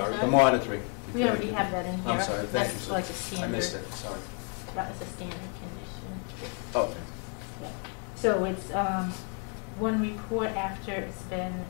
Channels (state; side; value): quieter; right; 35.9 dB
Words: The monitoring. we already have that in here. I'm sorry, thank you. That's like a I standard. missed it, sorry. That is a standard condition. Okay. So it's one report after it's been